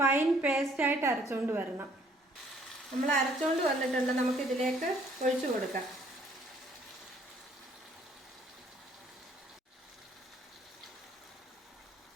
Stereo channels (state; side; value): normal; both; correlation 0.62